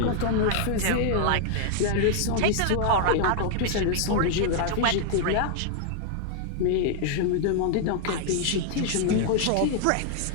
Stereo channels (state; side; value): different; both; correlation 0.00